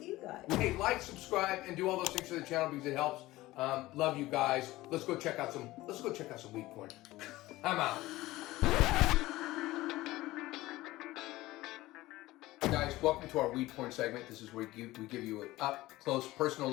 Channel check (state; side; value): quieter; right; 18.0 dB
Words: you guys. Hey, like, subscribe, and do all those things for the channel because it helps. Love you guys. Let's go check out some weed porn. I'm out. Guys, welcome to our weed porn segment. This is where we give you an up close personal